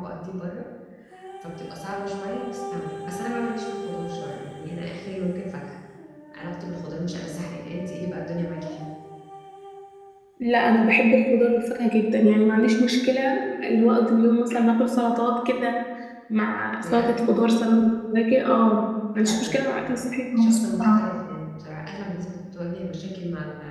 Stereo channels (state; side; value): identical; both; correlation 1.00